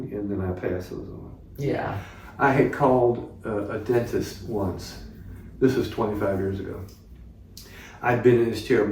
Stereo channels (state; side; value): identical; both; correlation 1.00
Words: and then I pass those on. Yeah. I had called a dentist once. This was 25 years ago. I'd been in his chair